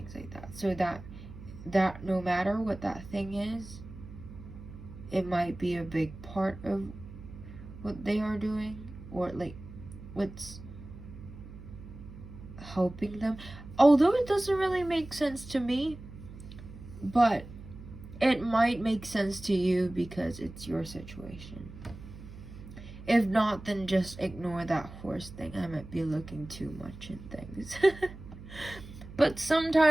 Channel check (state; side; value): noise; right; hum, 15 dB below the sound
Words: like that. So that no matter what that thing is, it might be a big part of what they are doing, or like what's helping them. Although it doesn't really make sense to me, but it might make sense to you because it's your situation. If not, then just ignore that horse thing. I might be looking too much in things. But